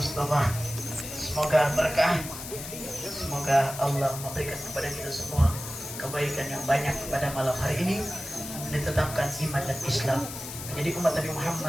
Semoga berkah, semoga Allah memberikan kepada kita semua kebaikan yang banyak pada malam hari ini, ditetapkan iman dan Islam menjadi umat Nabi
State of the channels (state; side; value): noise; left; hiss, 9 dB below the sound